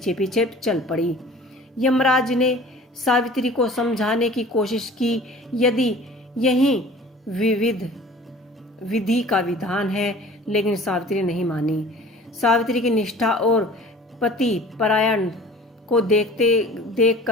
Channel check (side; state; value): both; normal; correlation 0.45